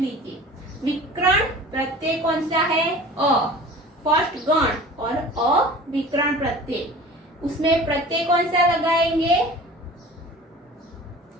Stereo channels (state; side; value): normal; both; correlation 0.41